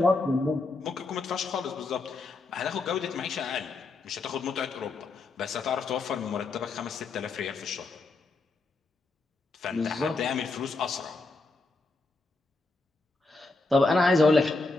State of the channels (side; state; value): right; quieter; 3.5 dB